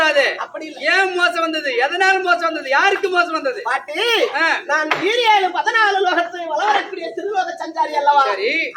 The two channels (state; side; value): identical; both; correlation 1.00